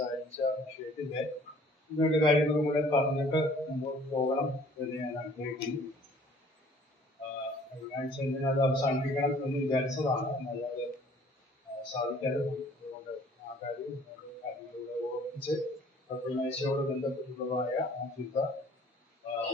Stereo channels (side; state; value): both; normal; correlation 0.55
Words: വിഷയത്തിൻ്റെ ഇങ്ങോട്ട് കാര്യങ്ങളും കൂടെ പറഞ്ഞിട്ട് മുമ്പോട്ട് പോകണം എന്ന് ഞാൻ ആഗ്രഹിക്കുന്നു. കഴിഞ്ഞ ആഴ്ച അത് അവസാനിപ്പിക്കണം എന്ന് വിചാരിച്ചതാണ്, എന്നാൽ അത് സാധിക്കാതെ പോയി. അതുകൊണ്ട് ആ കാര്യങ്ങളിലൂടെ ഓർപ്പിച്ച് പ്രത്യേകതയോട് ബന്ധപ്പെട്ടുള്ളതായ ആ ചിന്ത